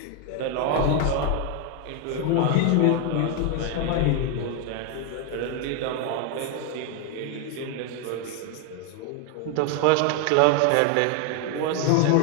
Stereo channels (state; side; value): different; both; correlation 0.01